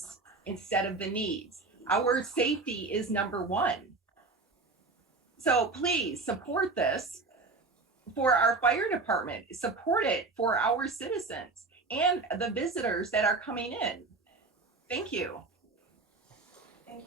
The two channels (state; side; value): quieter; left; 3.7 dB